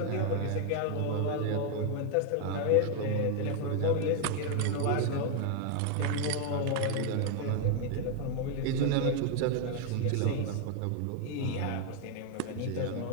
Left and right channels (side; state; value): both; different; correlation 0.01